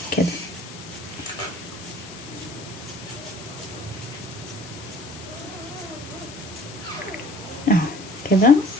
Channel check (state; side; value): noise; left; hiss, 15 dB below the sound